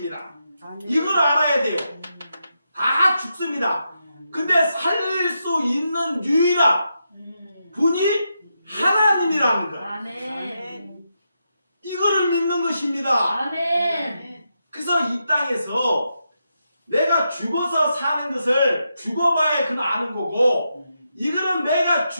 이걸 알아야 돼요. 다 죽습니다. 근데 살릴 수 있는 유일한 분이 하나님이라는 거예요. 아멘. 이거를 믿는 것입니다. 아멘. 그래서 이 땅에서 내가 죽어서 사는 것을 죽어봐야 그는 아는 거고 이거는 내가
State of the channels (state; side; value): inverted; both; correlation -0.85